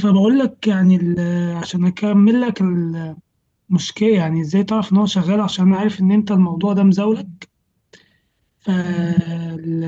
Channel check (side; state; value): both; identical; correlation 1.00